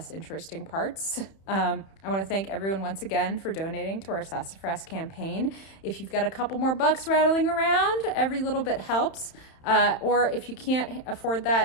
interesting parts. I want to thank everyone once again for donating to our Sassafras campaign. If you've got a couple more bucks rattling around, every little bit helps. Or if you can't afford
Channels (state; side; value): late; right; 31 ms